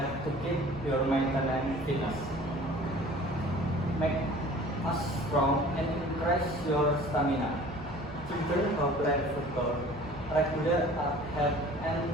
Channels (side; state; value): both; normal; correlation 0.47